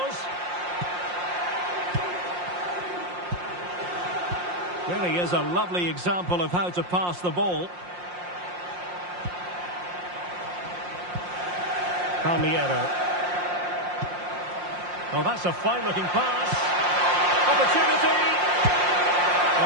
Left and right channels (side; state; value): left; late; 5.6 ms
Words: Really is a lovely example of how to pass the ball. Palmiero. Oh, that's a fine-looking pass. Opportunity!